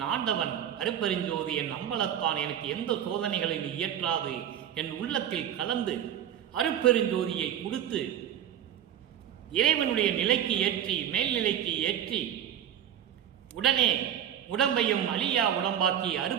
ஆண்டவன் அருப்பெருஞ்சோதி என் அம்பலத்தான் எனக்கு எந்த சோதனைகளையும் இயற்றாது என் உள்ளத்தில் கலந்து அருப்பெருஞ்சோதியை கொடுத்து இறைவனுடைய நிலைக்கு ஏற்றி, மேல்நிலைக்கு ஏற்றி, உடனே உடம்பையும் அழியா உடம்பாக்கி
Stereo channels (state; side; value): quieter; left; 10.0 dB